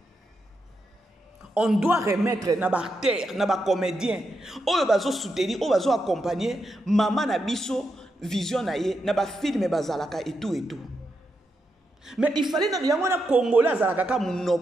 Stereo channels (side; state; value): both; normal; correlation 0.84